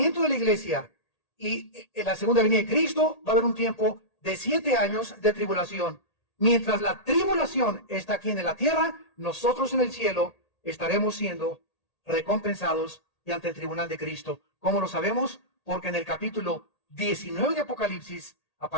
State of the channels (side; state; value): right; late; 1.8 ms